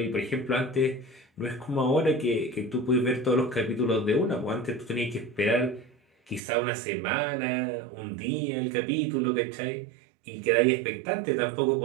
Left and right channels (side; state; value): left; drops out; at 6.4 s